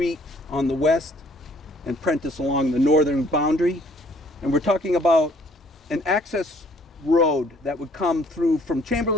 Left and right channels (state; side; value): normal; both; correlation 0.61